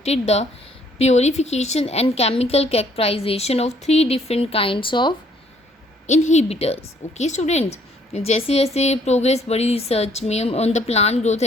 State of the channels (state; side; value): normal; both; correlation 0.64